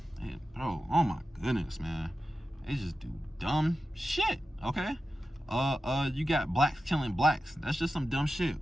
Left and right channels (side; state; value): both; normal; correlation 0.93